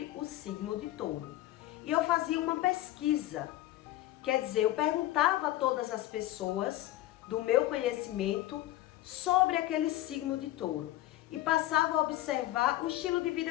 o signo de touro. E eu fazia uma pesquisa. Quer dizer, eu perguntava a todas as pessoas do meu conhecimento sobre aquele signo de touro e passava a observar o estilo de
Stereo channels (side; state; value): right; quieter; 15.5 dB